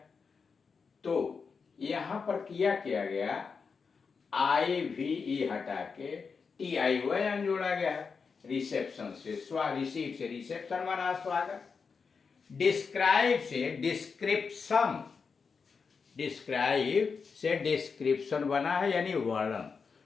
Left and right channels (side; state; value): right; quieter; 5.3 dB